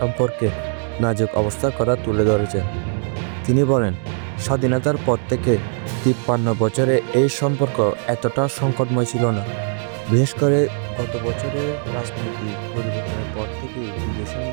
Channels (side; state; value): left; silent; digital silence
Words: নাজুক অবস্থার কথা তুলে ধরেছেন। তিনি বলেন, স্বাধীনতার পর থেকে ৫৩ বছরে এই সম্পর্ক এতটা সংকটময় ছিল না। বিশেষ করে গত বছরের রাজনৈতিক পরিবর্তনের পর থেকেই দুই দেশের